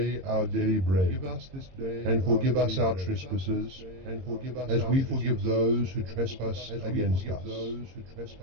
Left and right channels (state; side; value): late; left; 22 ms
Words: our daily bread, and forgive us our trespasses, as we forgive those who trespass against